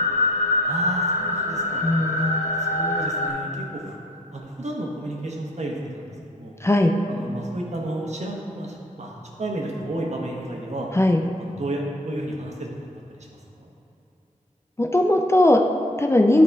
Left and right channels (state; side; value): normal; both; correlation 0.58